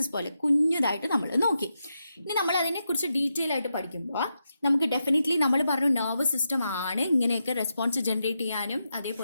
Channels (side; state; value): both; inverted; correlation -0.86